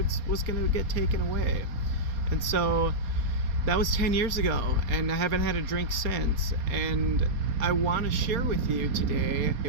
was going to get taken away. And so that was 10 years ago, and I haven't had a drink since. And I want to share with you today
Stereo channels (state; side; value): late; left; 4.2 ms